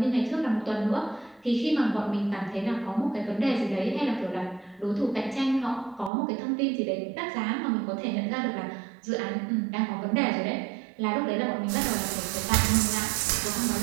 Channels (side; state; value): left; drops out; at 6.1 s